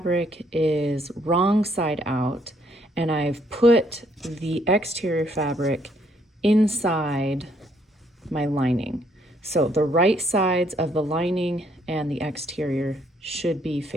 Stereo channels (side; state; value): both; normal; correlation 0.68